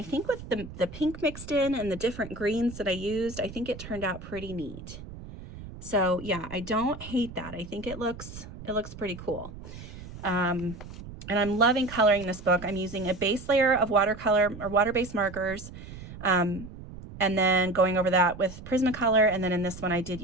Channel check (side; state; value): right; noise; rumble, 13 dB below the sound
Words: think with the pink mixed in and the different greens that I used, I think it turned out pretty neat. So yeah, I don't hate that. I think it looks pretty cool. And I'm loving coloring this book. I'm using a base layer of watercolor or water-based markers, and then going over that with Prismacolor. And then in this one, I did